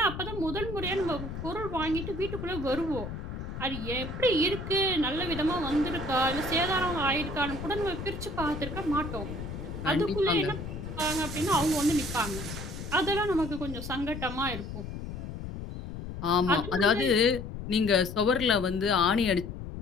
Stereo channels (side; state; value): left; noise; rumble, 8 dB below the sound